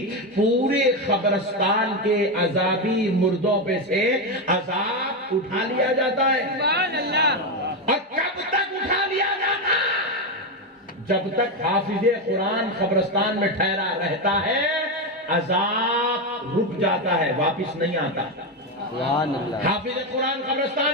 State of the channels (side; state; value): both; normal; correlation 0.10